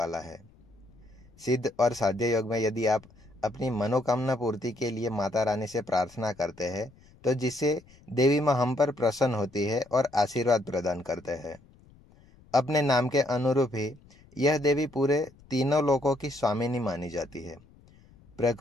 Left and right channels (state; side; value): noise; left; rumble, 27 dB below the sound